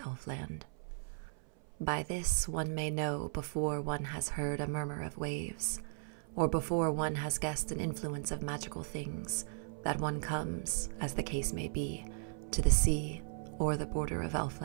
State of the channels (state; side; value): silent; left; 53 dB below the other